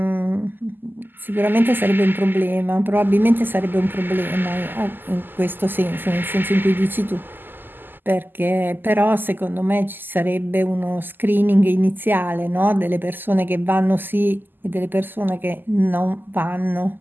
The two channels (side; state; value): left; late; 0.092 ms